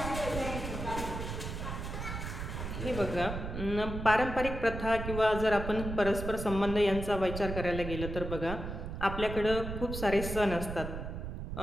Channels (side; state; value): right; noise; rumble, 6 dB below the sound